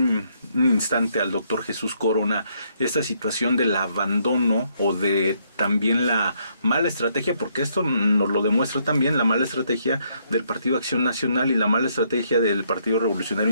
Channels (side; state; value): both; inverted; correlation -0.72